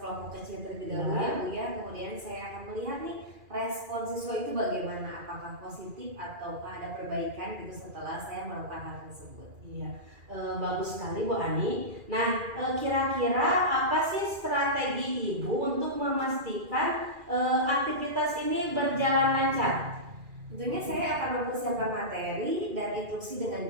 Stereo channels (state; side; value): late; left; 2.4 ms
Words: kecil terlebih dahulu ya Bu ya. Kemudian saya akan melihat nih respon siswa itu bagaimana, apakah positif ataukah ada perbaikan gitu setelah saya melakukan hal tersebut. Iya, bagus sekali Bu Ani. Nah, kira-kira apa sih strategi Ibu untuk memastikan aktivitas ini berjalan lancar? Tentunya saya akan mempersiapkan materi dan instruksi dengan